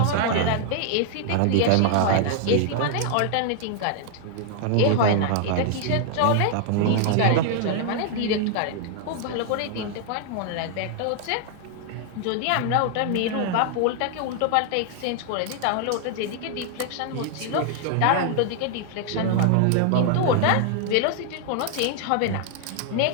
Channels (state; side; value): different; both; correlation 0.00